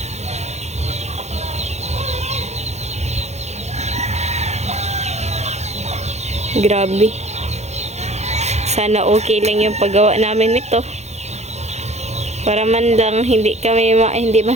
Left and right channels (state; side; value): late; left; 0.32 ms